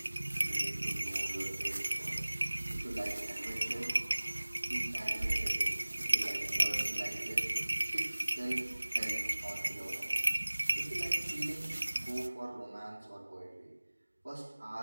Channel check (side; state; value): both; inverted; correlation -1.00